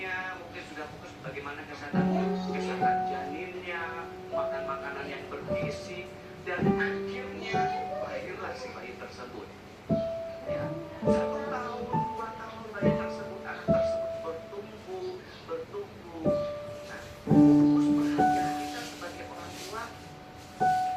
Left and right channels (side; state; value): both; identical; correlation 1.00